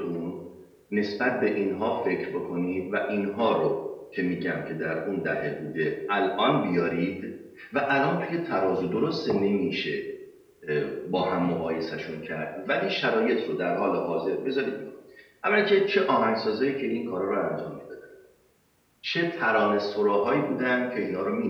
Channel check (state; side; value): identical; both; correlation 1.00